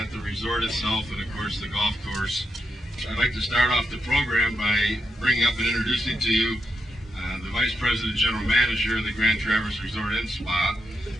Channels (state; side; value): normal; both; correlation 0.83